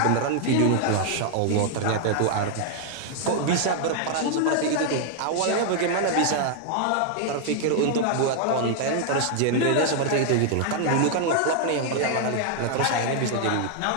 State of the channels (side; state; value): both; different; correlation 0.00